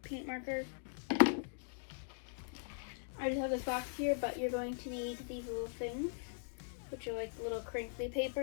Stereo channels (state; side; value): silent; right; digital silence